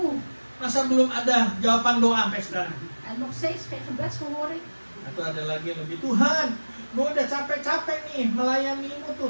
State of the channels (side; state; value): both; inverted; correlation -1.00